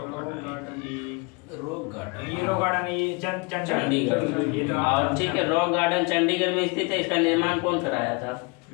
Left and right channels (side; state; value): right; quieter; 29.4 dB